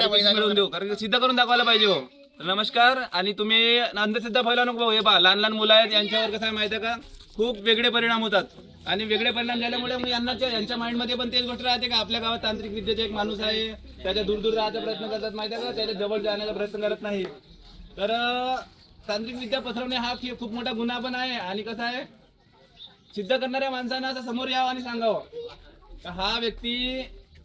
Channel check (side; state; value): both; identical; correlation 1.00